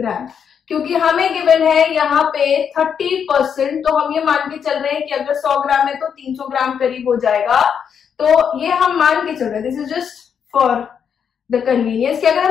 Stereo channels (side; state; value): right; quieter; 7.5 dB